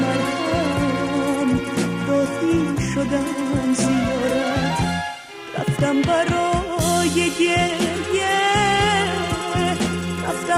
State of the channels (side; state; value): both; identical; correlation 1.00